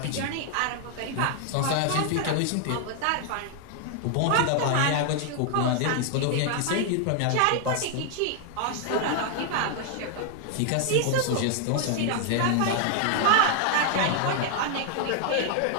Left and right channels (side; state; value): both; different; correlation 0.00